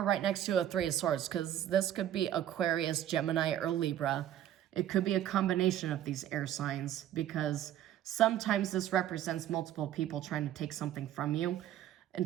right next to a 3 of Swords, because this could be Aquarius, Gemini, or Libra. It could be a combination of these air signs, because sometimes this represents multiple people trying to take something from you and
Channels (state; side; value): quieter; left; 11.5 dB